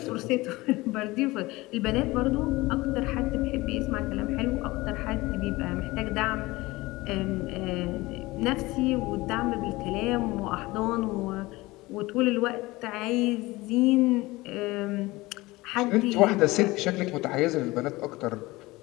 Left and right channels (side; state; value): right; quieter; 20.6 dB